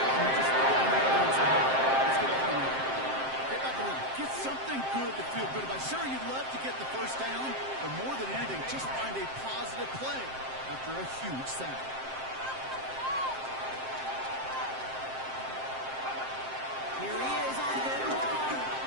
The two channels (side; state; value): left; late; 7.6 ms